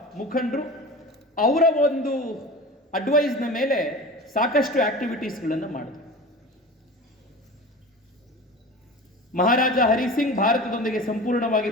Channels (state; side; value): normal; both; correlation 0.34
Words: ಮುಖಂಡರು, ಅವರ ಒಂದು ಅಡ್ವೈಸ್ನ ಮೇಲೆ ಸಾಕಷ್ಟು ಆಕ್ಟಿವಿಟೀಸ್ಗಳನ್ನು ಮಾಡಿದ್ರು. ಮಹಾರಾಜ ಹರಿಸಿಂಗ್ ಭಾರತದೊಂದಿಗೆ ಸಂಪೂರ್ಣವಾಗಿ